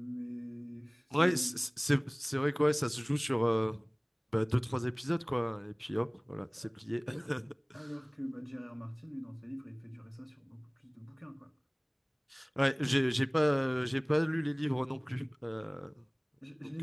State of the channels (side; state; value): both; identical; correlation 1.00